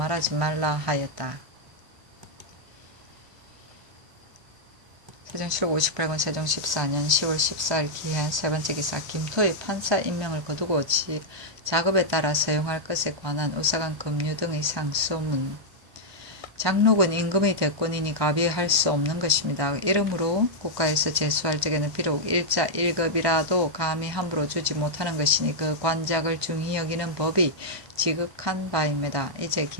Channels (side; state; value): left; late; 1.2 ms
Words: 말라 하였다. 세종실록 58권 세종 14년 10월 14일 기해 세번째 기사 김토의 판사 임명을 거두고 작업에 따라 사용할 것에 관한 우사간 급류 등의 상소문. 장록은 임금의 대권이니 가비할 수 없는 것입니다. 이러므로 국가에서 제수할 적에는 비록 일자 1급이라도 감히 함부로 주지 못하는 것이니 그 관작을 중히 여기는 법이 지극한 바입니다. 이제